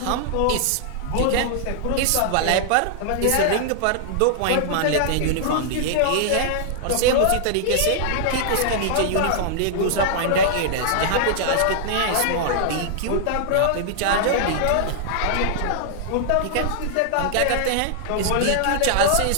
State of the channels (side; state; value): both; different; correlation -0.01